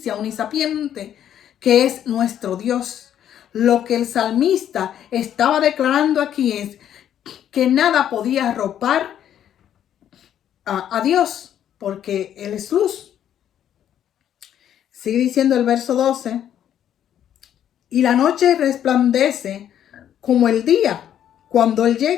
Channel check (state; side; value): quieter; right; 10.3 dB